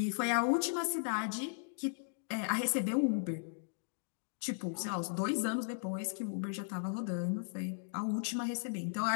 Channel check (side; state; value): right; silent; digital silence